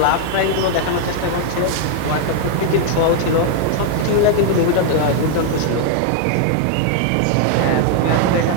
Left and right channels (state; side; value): different; both; correlation 0.00